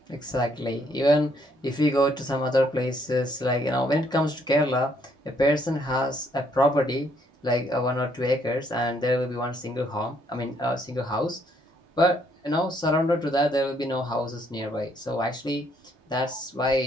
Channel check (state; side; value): normal; both; correlation 0.69